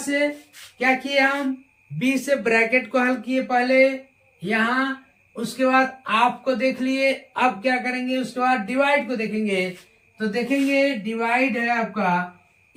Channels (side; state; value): both; identical; correlation 1.00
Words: क्या किए हम? बी से ब्रैकेट को हल किए पहले यहाँ, उसके बाद आपको देख लिए। अब क्या करेंगे? उसके बाद डिवाइड को देखेंगे, तो देखेंगे डिवाइड है आपका